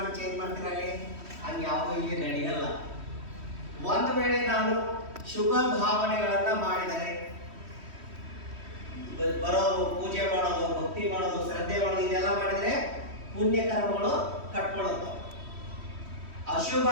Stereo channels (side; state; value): left; late; 3.1 ms